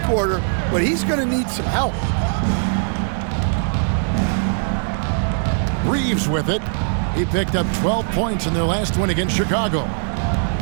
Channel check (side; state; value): left; silent; digital silence